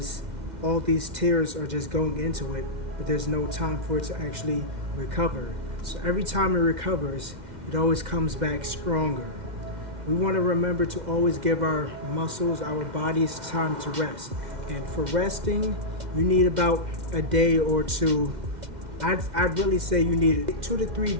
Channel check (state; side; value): late; left; 2.1 ms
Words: all these tears are just going into it, but there's no time for it to actually recover. So every time it recovers, it always comes back stronger. We want to remember to always give our muscles, our bodies, time to rest. And for resting, you need about a day or two. I'd really say you need 2 to 3